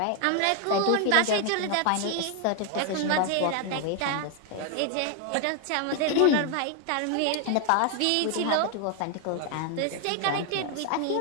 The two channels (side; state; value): both; different; correlation 0.01